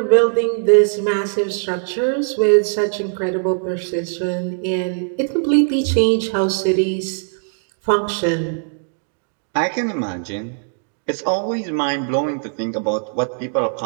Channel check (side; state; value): left; silent; digital silence